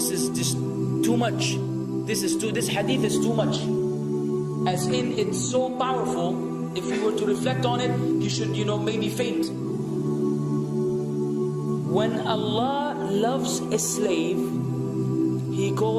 just too much. This hadith is too much. As in, it's so powerful. If you were to reflect on it, you should, maybe faint. When Allah loves a slave, He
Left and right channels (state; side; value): identical; both; correlation 1.00